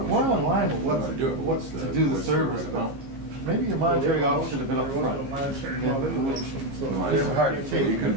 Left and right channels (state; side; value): late; left; 15 ms